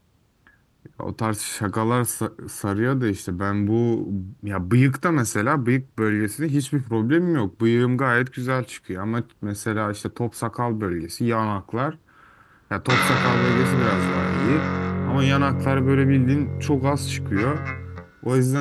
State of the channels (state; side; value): identical; both; correlation 1.00